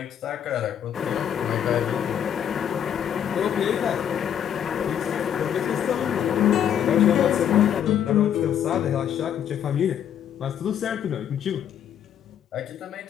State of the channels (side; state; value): right; quieter; 9.4 dB